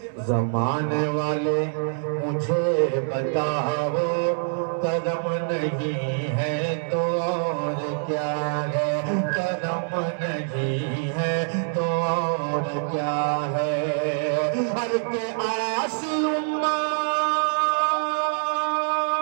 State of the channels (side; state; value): left; silent; digital silence